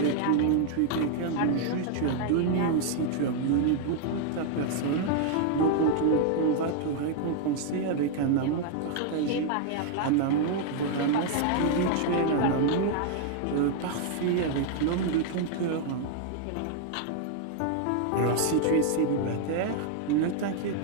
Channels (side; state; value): both; different; correlation 0.00